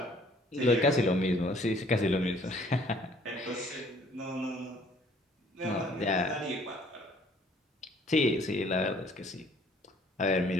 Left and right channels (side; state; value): both; normal; correlation 0.58